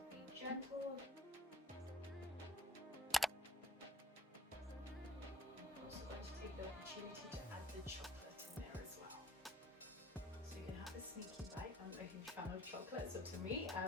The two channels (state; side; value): normal; both; correlation 0.54